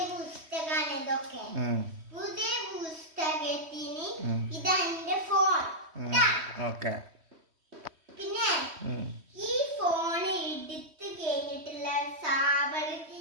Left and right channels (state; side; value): late; left; 3.1 ms